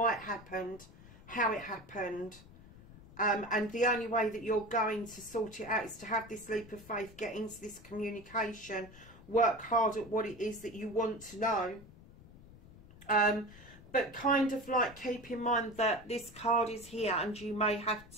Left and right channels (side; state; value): left; noise; rumble, 20 dB below the sound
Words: it happened, how it happened. And the only way that you're going to sort it out is to have this leap of faith, get into this communication, work hard at what it is that you want to know. But kind of like keep in mind that this card is here, and you may have